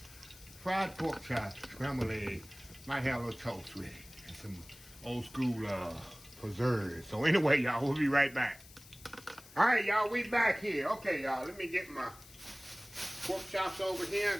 fried pork chops, scrambled eggs. Might have a little toast with it, and some old school preserves. So anyway, y'all, we'll be right back. All right, y'all, we back here. Okay, y'all, let me get my pork chops over here. I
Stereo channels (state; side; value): noise; left; hiss, 20 dB below the sound